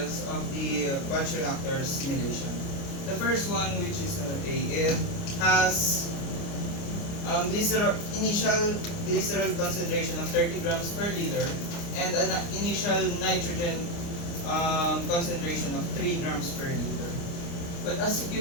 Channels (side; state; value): right; late; 29 ms